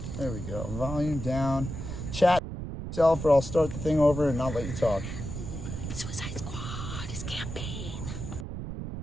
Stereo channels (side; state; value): right; noise; rumble, 6 dB below the sound